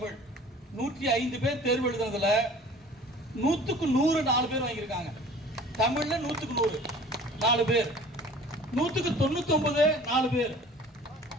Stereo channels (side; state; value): both; normal; correlation 0.47